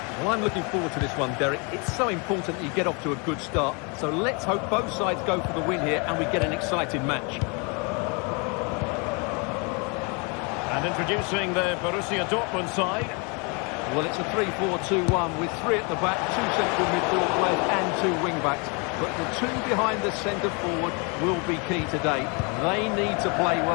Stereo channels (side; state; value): right; quieter; 32.7 dB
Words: Well, I'm looking forward to this one, Derek. It's so important that you get off to a good start. So let's hope both sides go for the win here and we get an exciting match. And introducing the Borussia Dortmund side. Well, it's a 3-4-2-1 with three at the back, two central midfield players and two wing-backs. But the two behind the centre forward will be key today. They need to play